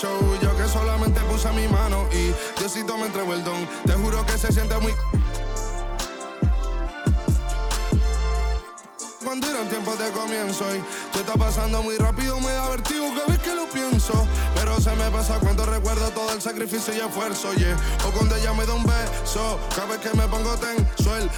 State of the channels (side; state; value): both; identical; correlation 1.00